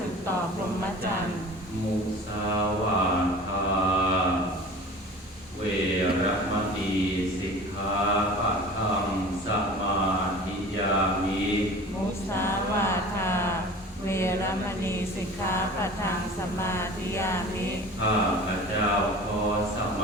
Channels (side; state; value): both; normal; correlation 0.40